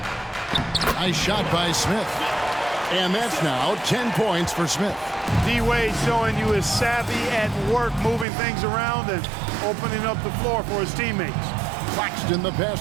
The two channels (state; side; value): drops out; left; at 8.2 s